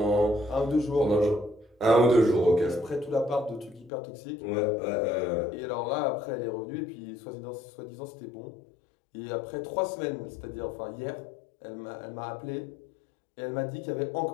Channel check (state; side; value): drops out; right; at 3.9 s